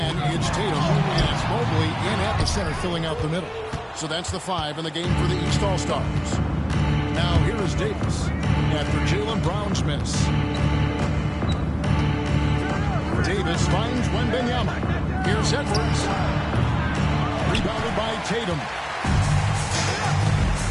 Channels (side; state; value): both; identical; correlation 1.00